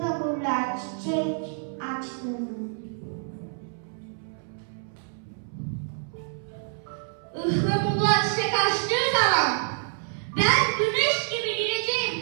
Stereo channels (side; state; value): left; silent; 60 dB below the other